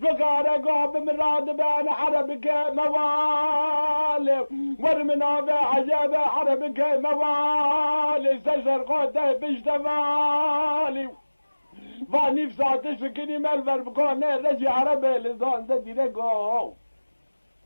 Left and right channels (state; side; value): inverted; both; correlation -1.00